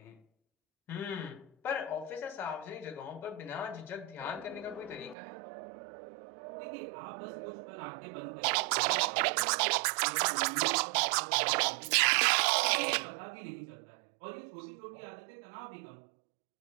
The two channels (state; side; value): drops out; left; at 5.2 s